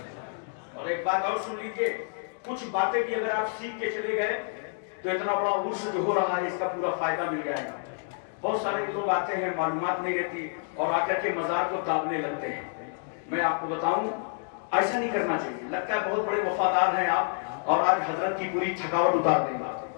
اور ایک بات اور سن لیجیے کچھ باتیں بھی اگر آپ سیکھ کے چلے گئے تو اتنا بڑا عرس جو ہو رہا ہے اس کا پورا فائدہ مل جائے گا. بہت سارے لوگ آتے ہیں معلومات نہیں رہتی اور آ کر کے مزار کو دابنے لگتے ہیں. میں آپ کو بتاؤں ایسا نہیں کرنا چاہیے. لگتا ہے بہت بڑے وفادار ہیں آپ اور آج حضرت کی پوری تھکاوٹ اتار دیں گا.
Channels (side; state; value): right; silent; digital silence